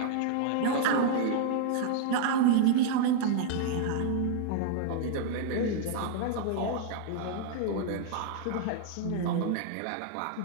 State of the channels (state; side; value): different; both; correlation -0.01